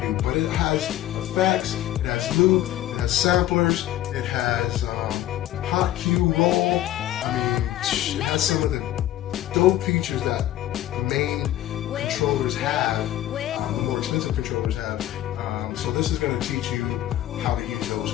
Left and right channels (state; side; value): quieter; right; 13.4 dB